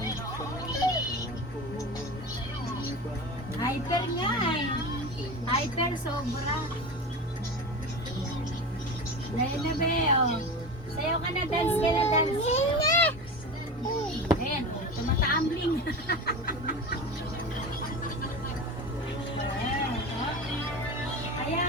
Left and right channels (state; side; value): normal; both; correlation 0.28